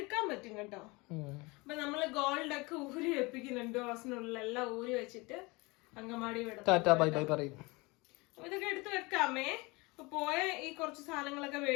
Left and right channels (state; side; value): quieter; right; 25.2 dB